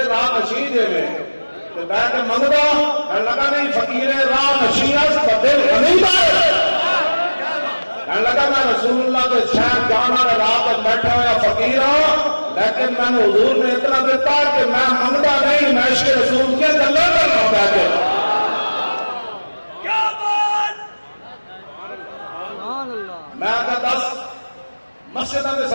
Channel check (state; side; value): inverted; both; correlation -1.00